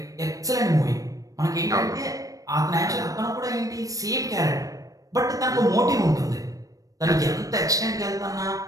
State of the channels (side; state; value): left; late; 0.16 ms